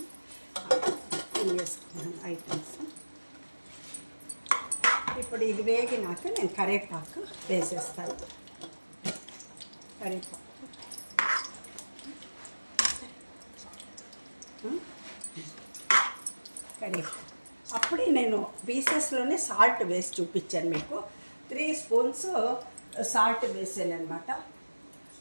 వేసుకున్నాను ఐటమ్స్. ఇప్పుడు ఇది వేగినాక నేను కరివేపాకు వేసేస్తాను. కరివేపాకు కరివేపాకు అప్పుడే నేను పీసెస్లోనే సాల్ట్ వేసి చూపించాను మీకు. 3 స్పూన్స్ సాల్ట్ వేసాను అనమాట.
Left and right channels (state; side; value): inverted; both; correlation -1.00